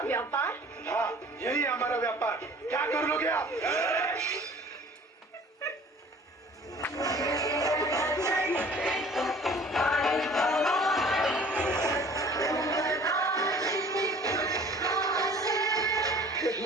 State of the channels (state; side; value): normal; both; correlation 0.49